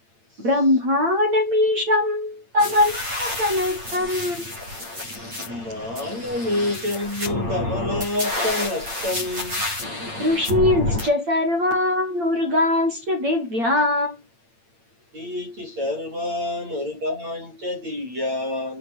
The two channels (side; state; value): left; late; 8.8 ms